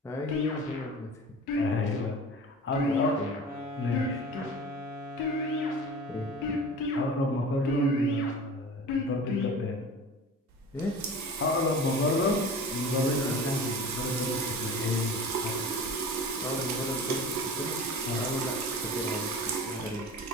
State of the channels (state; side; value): normal; both; correlation 0.37